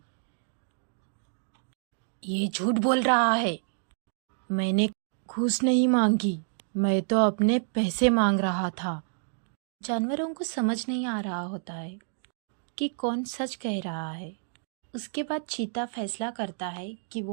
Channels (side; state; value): left; silent; digital silence